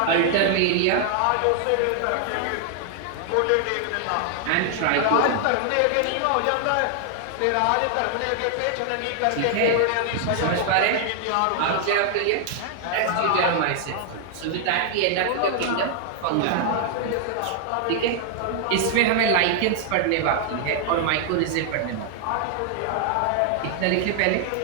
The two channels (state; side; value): different; both; correlation 0.00